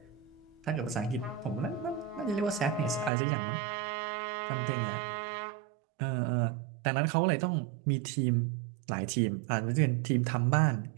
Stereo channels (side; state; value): left; drops out; at 3.1 s